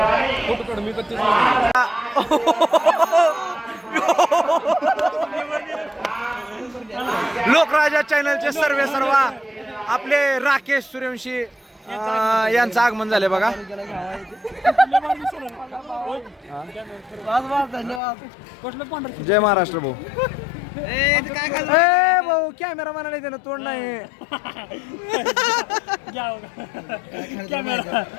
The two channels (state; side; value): drops out; right; at 18.0 s